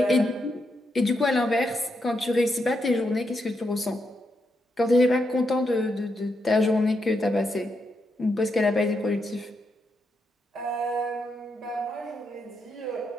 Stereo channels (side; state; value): both; normal; correlation 0.82